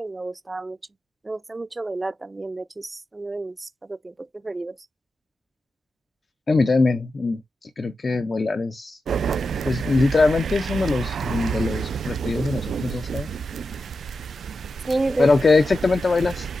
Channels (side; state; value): both; normal; correlation 0.90